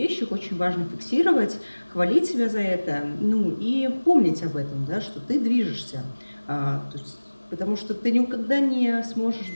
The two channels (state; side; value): inverted; both; correlation -1.00